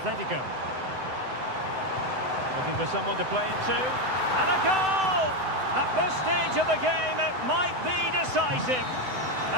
Looking for someone to play it to. And a goal! At this stage of the game, it might be decisive.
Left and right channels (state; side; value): late; left; 7.9 ms